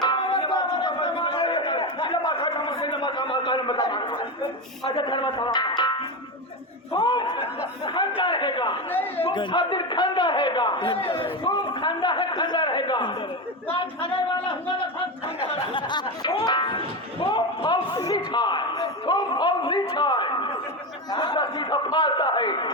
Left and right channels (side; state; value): both; normal; correlation 0.16